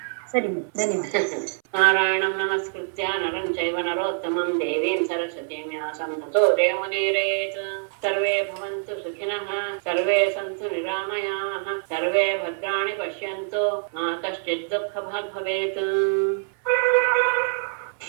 ಸರಿ, ಧನ್ಯವಾದ. ನಾರಾಯಣಂ ನಮಸ್ಕೃತ್ಯ ನರಂ ಚೈವ ನರೋತ್ತಮಂ ದೇವೀಂ ಸರಸ್ವತೀಂ ವ್ಯಾಸಂ ತತೋ ಜಯಮುದೀರಯೇತ್. ಸರ್ವೇ ಭವಂತು ಸುಖಿನಃ, ಸರ್ವೇ ಸಂತು ನಿರಾಮಯಾಃ, ಸರ್ವೇ ಭದ್ರಾಣಿ ಪಶ್ಯಂತು, ಮಾ ಕಶ್ಚಿತ್ ದುಃಖಭಾಗ್ ಭವೇತ್.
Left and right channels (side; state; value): left; silent; 62 dB below the other